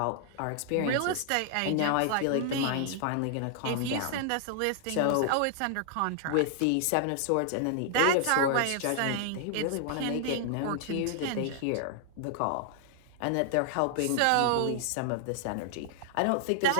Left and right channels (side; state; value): both; different; correlation 0.00